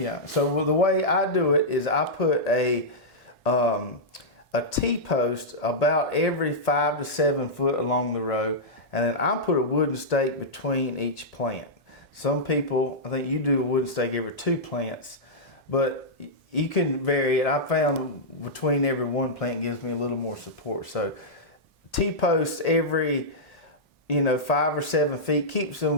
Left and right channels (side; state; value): both; normal; correlation -0.10